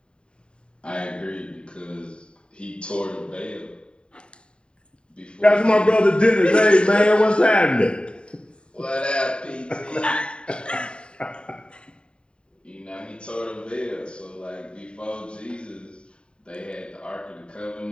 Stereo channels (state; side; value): late; right; 0.052 ms